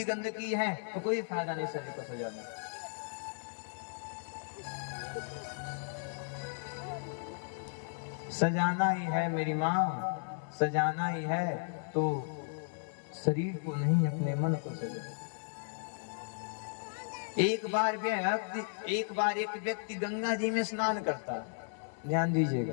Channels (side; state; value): right; silent; digital silence